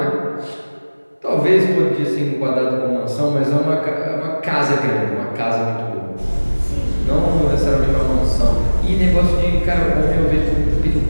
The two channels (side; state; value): both; inverted; correlation -1.00